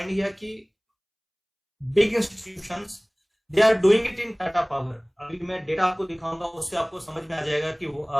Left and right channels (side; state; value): both; identical; correlation 1.00